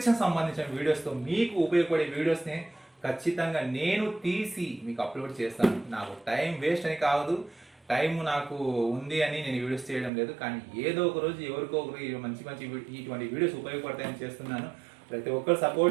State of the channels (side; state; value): left; drops out; at 10.1 s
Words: సంబంధించిన వీడియోస్తో, మీకు ఉపయోగపడే వీడియోస్ని ఖచ్చితంగా నేను తీసి మీకు అప్లోడ్ చేస్తాను. నాకు టైం వేస్ట్ అని కాదు, టైం నాకు ఉంది అని నేను వీడియోస్ చేయడం లేదు, కానీ ఏదో ఒక రోజు ఎవరికో ఒకరు మంచి మంచి ఇటువంటి వీడియోస్ ఉపయోగపడతాయని చేస్తున్నాను. ప్రతి ఒక్కరు